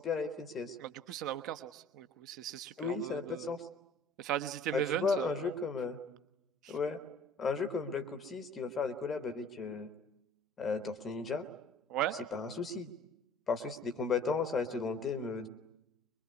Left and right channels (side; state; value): both; normal; correlation 0.50